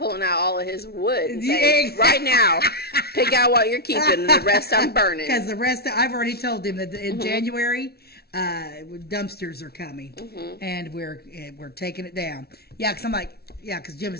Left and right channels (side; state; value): right; late; 0.45 ms